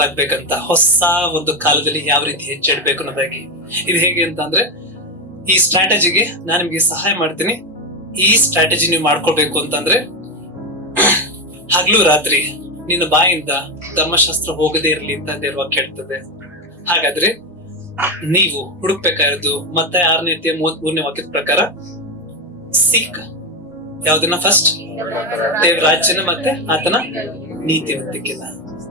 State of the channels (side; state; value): both; normal; correlation 0.13